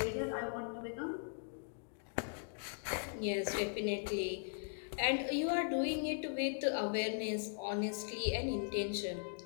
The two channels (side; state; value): right; silent; digital silence